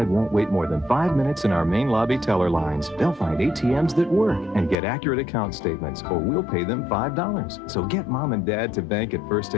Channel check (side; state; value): right; drops out; at 4.8 s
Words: won't wait more than 5 minutes in our main lobby teller lines. They'll find ATMs that work and get accurate account statements, or we'll pay them $5. So get Mom and Dad to bank at First